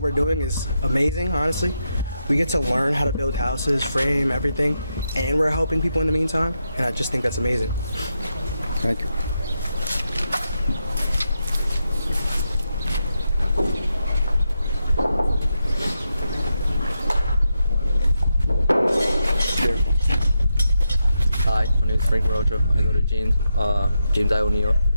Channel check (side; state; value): both; inverted; correlation -0.85